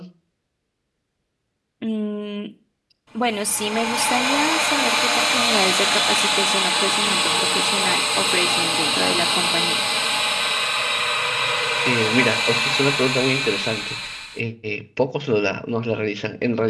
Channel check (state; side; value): identical; both; correlation 1.00